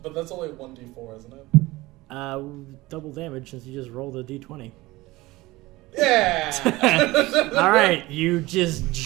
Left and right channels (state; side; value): quieter; left; 19.8 dB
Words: But that's only 1d4, isn't it? Double damage since you just rolled a d20. Yeah! All right, you just